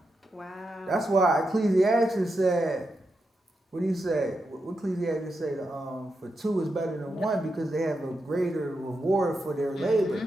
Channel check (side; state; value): both; normal; correlation 0.86